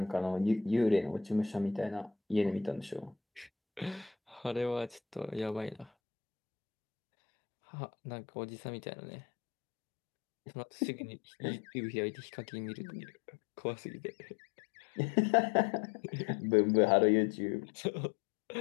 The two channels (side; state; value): right; drops out; at 5.9 s